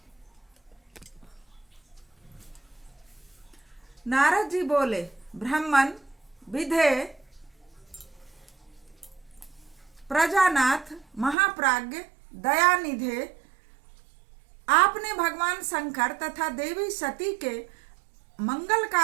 नारद जी बोले, ब्राह्मण विधे प्रजानाथ महाप्राज्ञ दयानिधे, आपने भगवान शंकर तथा देवी सती के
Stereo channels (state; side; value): drops out; left; at 11.4 s